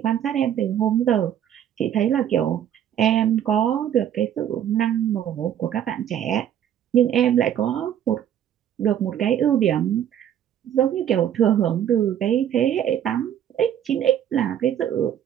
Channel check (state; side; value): quieter; left; 10.1 dB